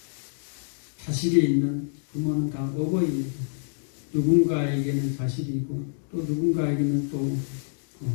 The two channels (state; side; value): silent; right; digital silence